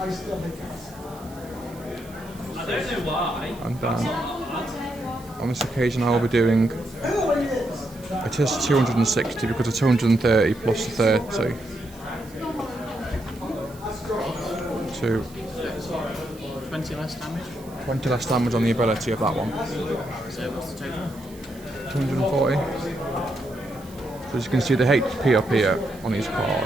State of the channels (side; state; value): right; noise; hiss, 22 dB below the sound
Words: don't know why. And then on this occasion I will be doing, it is 260 because it's 230 plus 30. 20 less damage. 20 less damage on the ability of that one. So what's the total? 240. So as you can see the HP up here on these